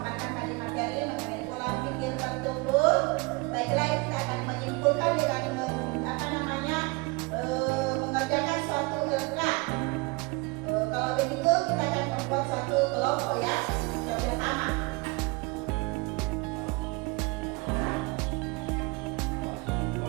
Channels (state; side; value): quieter; left; 27.1 dB